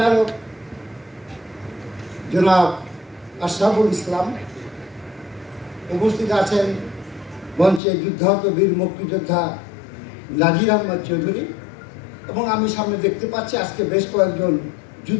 জনাব আশরাফুল ইসলাম। উপস্থিত আছেন মঞ্চে যুদ্ধাহত বীর মুক্তিযোদ্ধা নাজির আহমদ চৌধুরী এবং আমি সামনে দেখতে পাচ্ছি আজকে বেশ কয়েকজন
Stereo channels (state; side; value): drops out; right; at 7.8 s